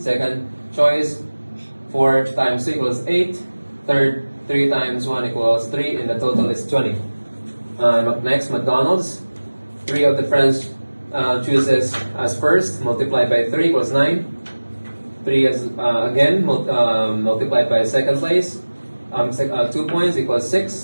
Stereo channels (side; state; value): both; inverted; correlation -1.00